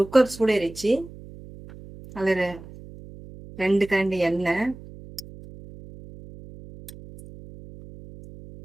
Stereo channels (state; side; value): noise; right; hum, 17 dB below the sound